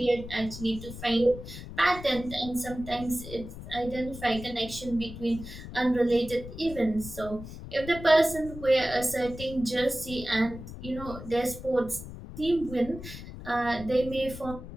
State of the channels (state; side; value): noise; left; rumble, 12 dB below the sound